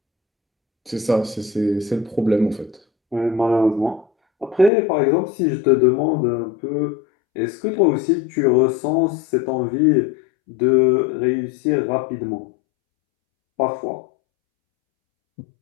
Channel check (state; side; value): drops out; right; at 4.7 s